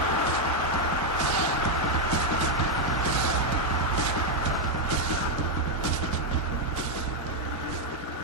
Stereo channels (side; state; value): both; normal; correlation 0.01